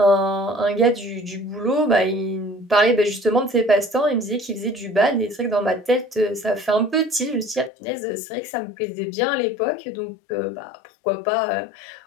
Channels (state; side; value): drops out; right; at 7.7 s